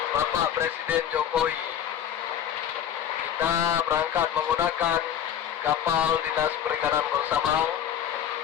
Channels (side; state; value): right; quieter; 9.7 dB